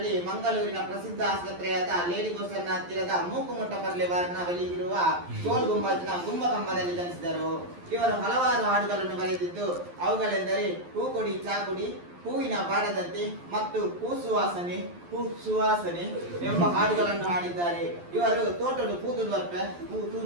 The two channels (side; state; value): left; late; 11 ms